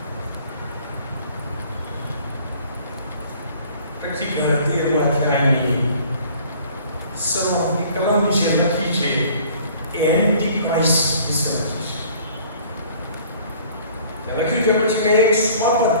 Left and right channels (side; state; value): both; inverted; correlation -0.53